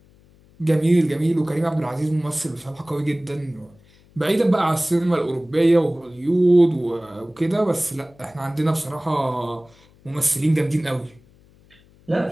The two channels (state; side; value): noise; left; hum, 29 dB below the sound